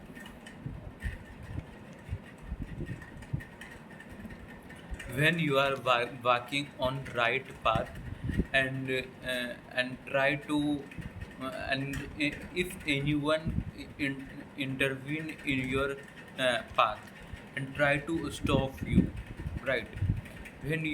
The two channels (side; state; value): both; identical; correlation 1.00